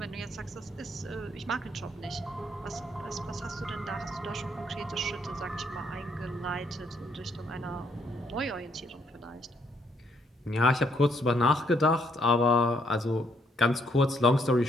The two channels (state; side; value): normal; both; correlation 0.71